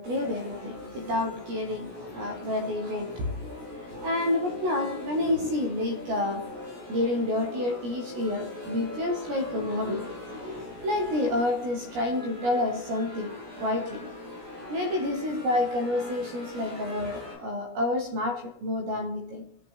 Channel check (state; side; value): late; left; 17 ms